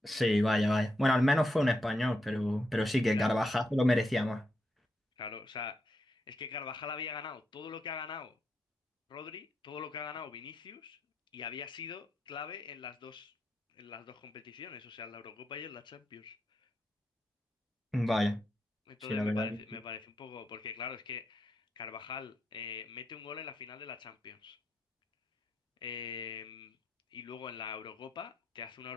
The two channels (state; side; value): normal; both; correlation 0.83